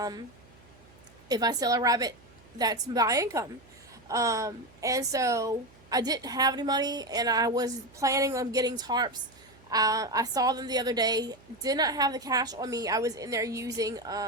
If I sell a rabbit, that's my income. And so I didn't have any money, and I was planning on getting tarps. I saw them the other day. Did not have the cash on me. I was in there using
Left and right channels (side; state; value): right; noise; hum, 26 dB below the sound